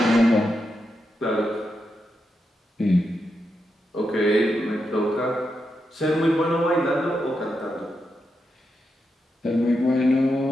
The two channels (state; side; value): normal; both; correlation 0.86